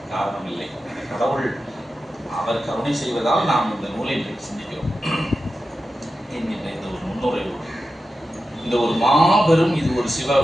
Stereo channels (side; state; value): both; normal; correlation 0.92